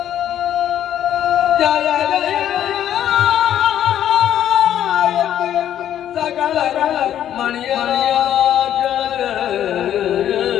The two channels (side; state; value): right; quieter; 10.8 dB